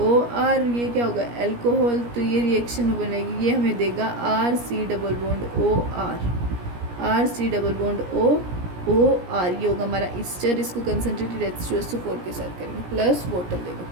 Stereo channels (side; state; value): left; late; 17 ms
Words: ये क्या होगा? एल्कोहल। तो ये रिएक्शन में बनेगी, ये हमें देगा RC double bond OR, RC double bond OR, ये होगा हमारा ईस्टर। इसको कंसनट्रेटेड H2SO4 के साथ करेंगे, प्लस वाटर देगा,